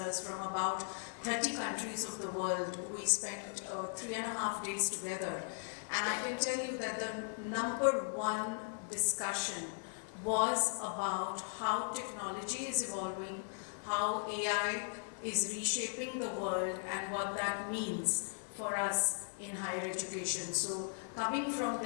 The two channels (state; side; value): silent; right; digital silence